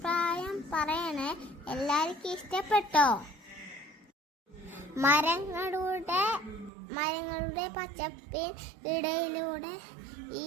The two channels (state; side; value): drops out; left; at 6.7 s